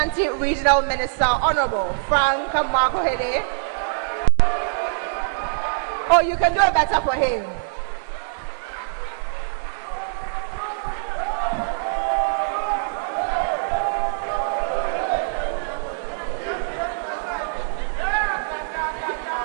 Regional Minister, Honorable Frank Makohede. Oh, you can do it better for him.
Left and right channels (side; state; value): left; silent; 59 dB below the other